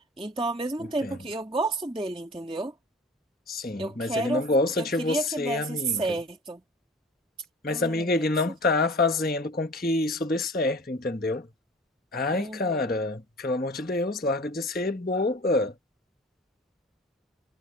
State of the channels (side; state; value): both; normal; correlation 0.41